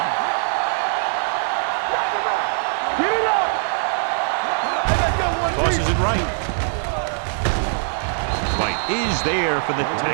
Tosses it right. White is there for the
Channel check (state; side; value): silent; left; digital silence